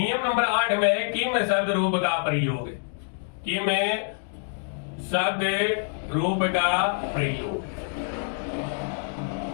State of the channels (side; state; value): right; silent; 61 dB below the other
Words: नंबर 8 में किम शब्द रूप का प्रयोग। किम शब्द रूप का प्रयोग।